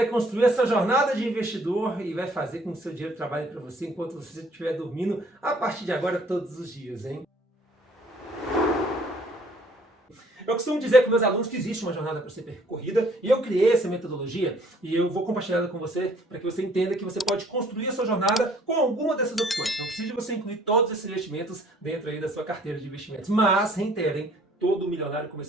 construir essa jornada de investidor e vai fazer com que o seu dinheiro trabalhe para você enquanto você estiver dormindo a partir de agora todos os dias, hein? Eu costumo dizer para meus alunos que existe uma jornada para ser percorrida e eu criei essa metodologia e eu vou compartilhar ela com você para que você entenda que você pode construir a sua jornada com alguma dessas opções. Não precisa você incluir todos esses investimentos dentro aí da sua carteira de investimentos, mas reiterem, todo milionário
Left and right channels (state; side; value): normal; both; correlation 0.59